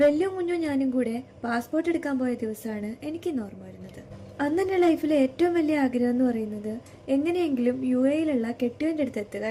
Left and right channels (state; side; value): identical; both; correlation 1.00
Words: വെല്ലും കുഞ്ഞും ഞാനും കൂടെ പാസ്പോർട്ട് എടുക്കാൻ പോയ ദിവസമാണ് എനിക്കിന്ന് ഓർമ്മ വരുന്നത്. അന്ന് എൻ്റെ ലൈഫിലെ ഏറ്റവും വലിയ ആഗ്രഹം എന്ന് പറയുന്നത് എങ്ങനെയെങ്കിലും UAE-യിലുള്ള കെട്ടിയവൻ്റെ അടുത്ത് എത്തുക